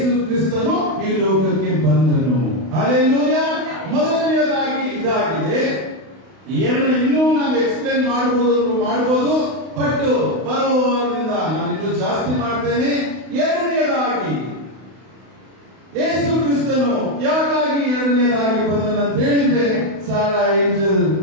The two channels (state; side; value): late; left; 32 ms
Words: ಕ್ರಿಸ್ತನು ಈ ಲೋಕಕ್ಕೆ ಬಂದನು. ಹಲ್ಲೆಲೂಯಾ. ಮೊದಲನೆಯದಾಗಿ ಇದಾಗಿದೆ. ಇನ್ನೂ ನಾವು ಎಕ್ಸ್ಪ್ಲೇನ್ ಮಾಡಬಹುದು, ಬಟ್ ಬರುವವರಿಂದ ನಾನು ಇನ್ನೂ ಜಾಸ್ತಿ ಮಾಡ್ತೇನೆ. ಎರಡನೆಯದಾಗಿ ಯೇಸು ಕ್ರಿಸ್ತನು ಯಾಕಾಗಿ ಎರಡನೆಯದಾಗಿ ಬಂದನಂತ ಹೇಳಿದ್ರೆ, ಸಾರಾ angel